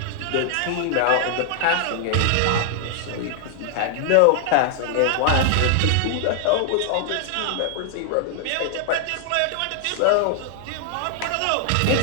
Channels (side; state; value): both; different; correlation 0.00